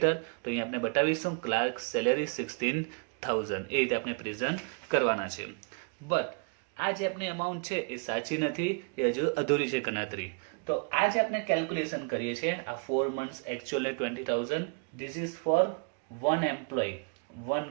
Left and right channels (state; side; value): quieter; left; 36.6 dB